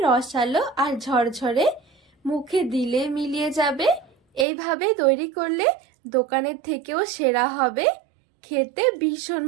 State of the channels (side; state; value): left; drops out; at 4.5 s